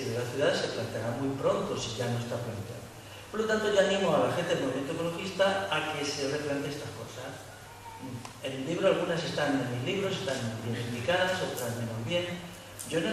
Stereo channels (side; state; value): both; identical; correlation 1.00